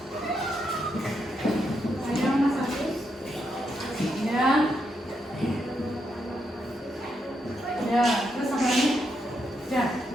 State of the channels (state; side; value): normal; both; correlation 0.81